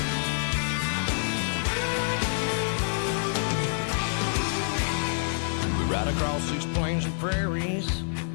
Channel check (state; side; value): silent; right; digital silence